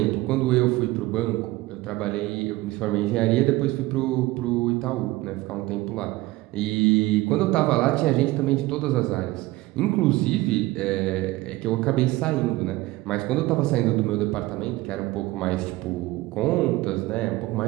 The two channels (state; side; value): quieter; left; 18.9 dB